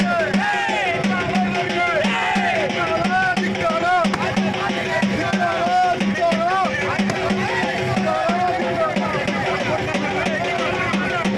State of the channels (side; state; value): both; identical; correlation 1.00